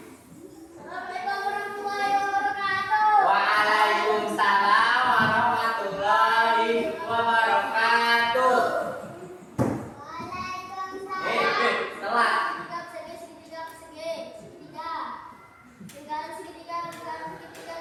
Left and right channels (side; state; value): both; identical; correlation 1.00